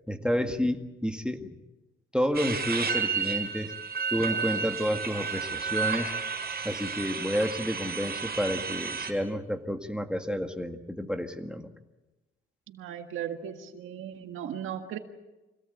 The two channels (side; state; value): both; normal; correlation 0.59